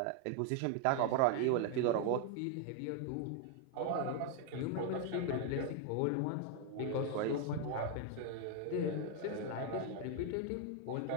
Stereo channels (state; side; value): different; both; correlation 0.01